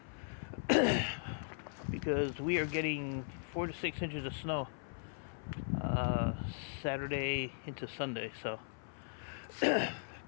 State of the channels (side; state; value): right; silent; 52 dB below the other